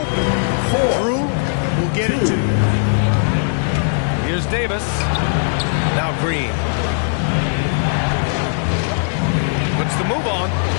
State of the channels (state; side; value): silent; right; digital silence